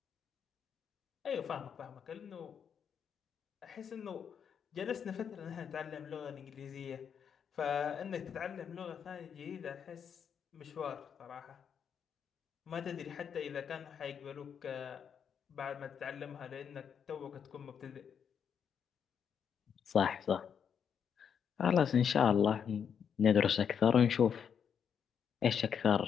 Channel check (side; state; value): right; quieter; 7.5 dB